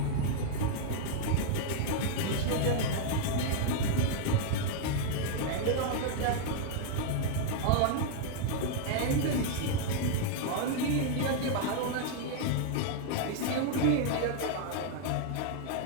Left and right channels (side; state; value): both; different; correlation 0.00